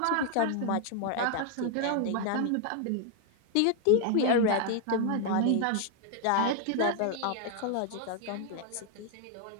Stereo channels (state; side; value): different; both; correlation 0.00